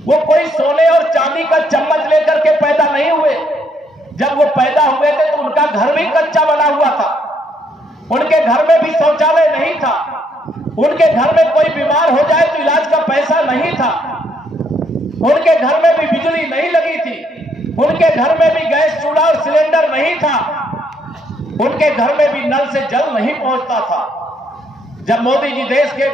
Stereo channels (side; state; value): both; normal; correlation 0.71